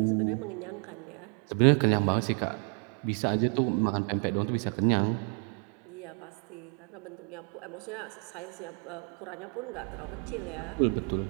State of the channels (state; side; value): quieter; left; 37.9 dB